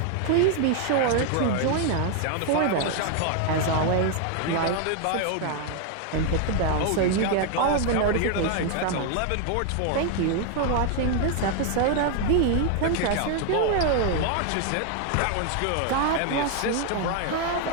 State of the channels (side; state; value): both; different; correlation 0.00